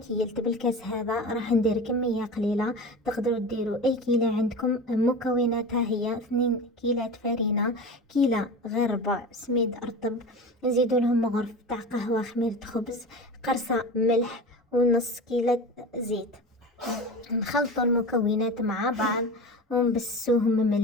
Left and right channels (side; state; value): both; normal; correlation 0.31